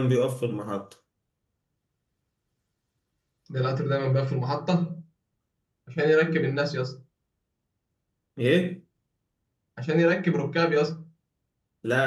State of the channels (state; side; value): identical; both; correlation 1.00